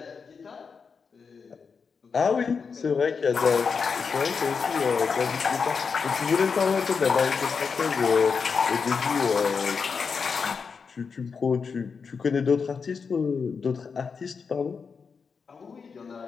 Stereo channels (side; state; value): right; quieter; 5.6 dB